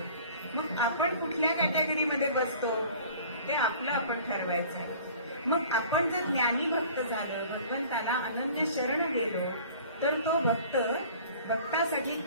मग आपण कुठल्या कॅटेगरीमध्ये बसतो ते आपलं आपण ठरवायचं आहे. मग आपण जर ज्ञानी भक्त झालं, भगवंताला अनन्य शरण गेलो तर तो भक्त भक्तासाठी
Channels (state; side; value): inverted; both; correlation -0.47